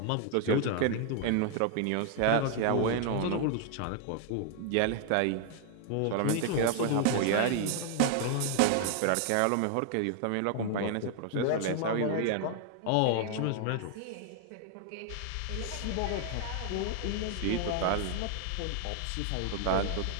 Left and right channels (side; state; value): both; different; correlation 0.00